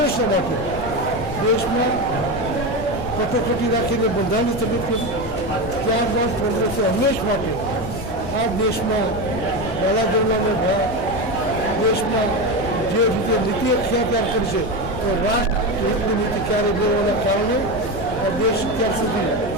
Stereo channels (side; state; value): left; noise; rumble, 11 dB below the sound